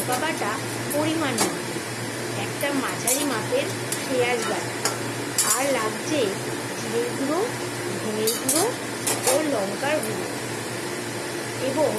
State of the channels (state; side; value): identical; both; correlation 1.00